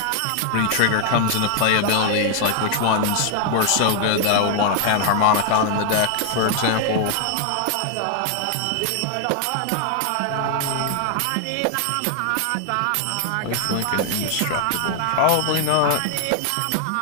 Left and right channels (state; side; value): different; both; correlation 0.00